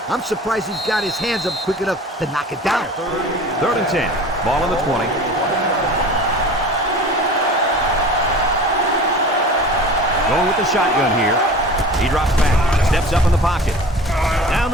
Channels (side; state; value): both; normal; correlation 0.39